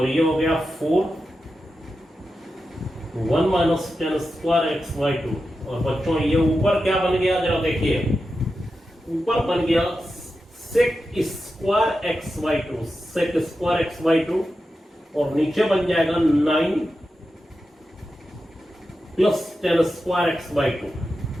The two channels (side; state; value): both; normal; correlation 0.90